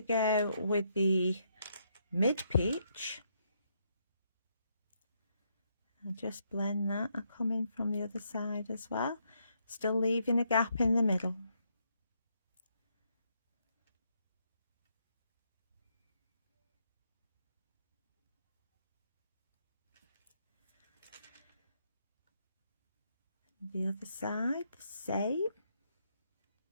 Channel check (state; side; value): inverted; both; correlation -0.76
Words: go with the mid peach. I'll just blend that. I'll come in from the other side as well, still leaving a gap in the middle. The other side, the same.